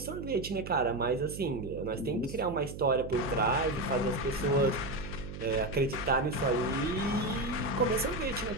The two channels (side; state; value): right; noise; hum, 10 dB below the sound